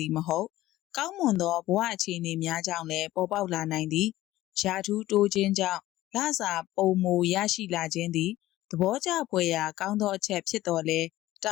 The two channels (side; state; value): right; quieter; 15.8 dB